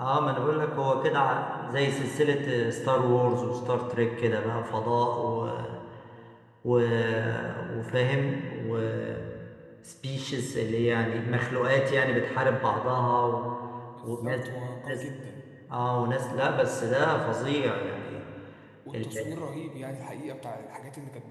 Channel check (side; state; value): both; identical; correlation 1.00